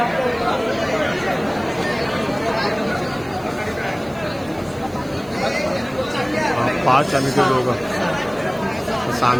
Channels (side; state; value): right; noise; hiss, 25 dB below the sound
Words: पाच आम्ही ते दोघं